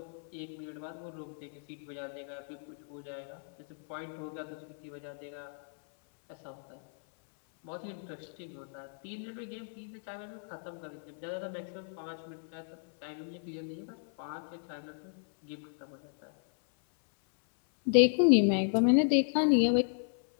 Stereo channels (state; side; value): silent; right; 55 dB below the other